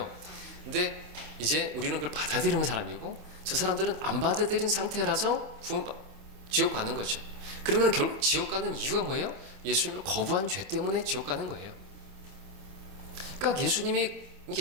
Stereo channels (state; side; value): late; left; 27 ms